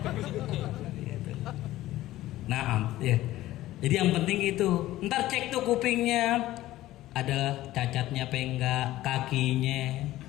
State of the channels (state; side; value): quieter; right; 15.6 dB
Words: Nah, ya. Jadi yang penting itu, ntar cek tuh kupingnya, ada cacatnya apa enggak, kakinya.